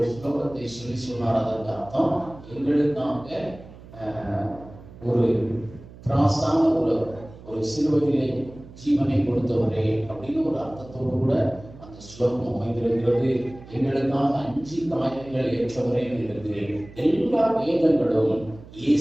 ஸ்லோகத்தை சொல்லி சொன்னார். அதற்கு அர்த்தம், எங்களுக்காக ஒரு திராசான ஒரு சிலுவையிலே ஜீவனை கொடுத்தவரே அப்படின்னு ஒரு அர்த்தத்தோடு கூட அந்த ஸ்லோகம் அமைந்திருக்கிறது. எங்களுக்காக 5 காயங்கள் ஏற்றவரே இருக்கிறது. எல்லா வேதங்களும்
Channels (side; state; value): right; noise; hum, 19 dB below the sound